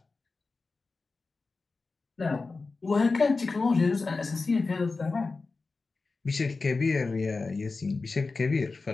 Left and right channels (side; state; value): right; quieter; 3.9 dB